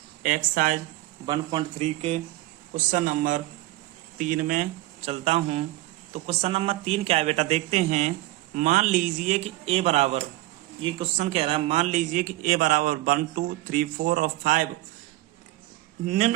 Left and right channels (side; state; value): left; quieter; 17.4 dB